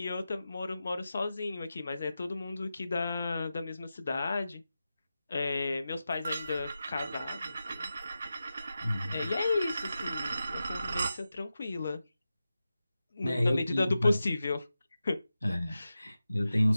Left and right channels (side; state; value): both; inverted; correlation -0.92